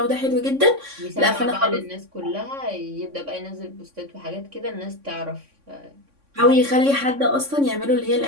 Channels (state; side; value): late; left; 3.6 ms